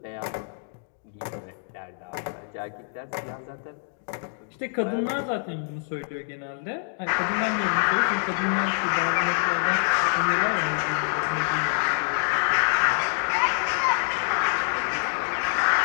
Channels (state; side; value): silent; right; digital silence